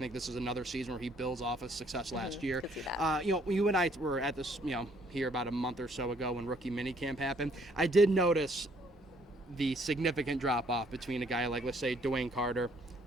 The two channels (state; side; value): normal; both; correlation 0.64